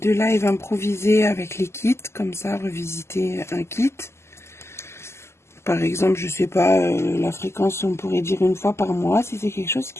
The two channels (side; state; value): right; late; 0.13 ms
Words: de live improvisé avec les kits, comme ça, revisiter un kit. Par exemple, je sais pas, la fréquence, on pourrait dire 1 fois par mois, si c'est quelque chose